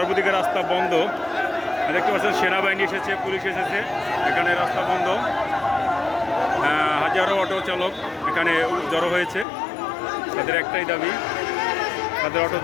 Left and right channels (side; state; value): right; drops out; at 9.5 s